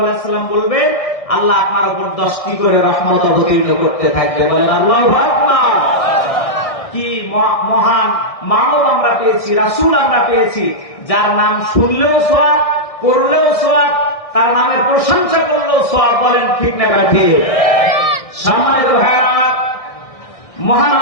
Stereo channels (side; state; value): right; late; 1.6 ms